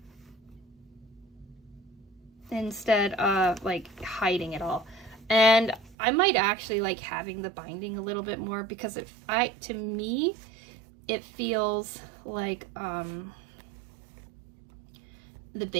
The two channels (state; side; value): drops out; left; at 6.0 s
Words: instead of like hiding it all. And I might actually like having the binding a little bit more, because to me it feels like the